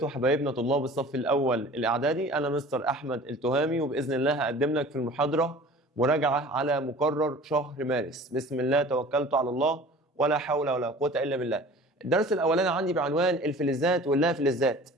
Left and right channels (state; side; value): normal; both; correlation 0.43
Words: حبايبنا طلاب الصف الأول الإعدادي. أنا مستر أحمد التهامي، وبإذن الله هقدم لك في المحاضرة مراجعة على مقرر شهر مارس. بسم الله توكلت على الله ولا حول ولا قوة إلا بالله. الدرس الأولاني عندي بعنوان الفلزات واللا فلزات.